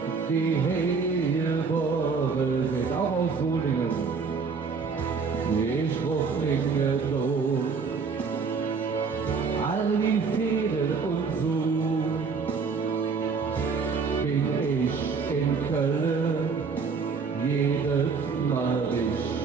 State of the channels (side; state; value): left; quieter; 5.1 dB